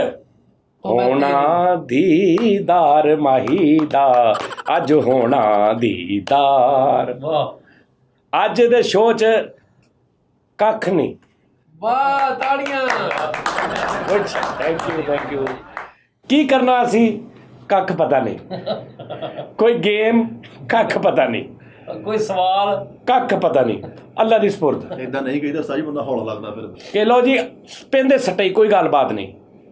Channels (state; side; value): identical; both; correlation 1.00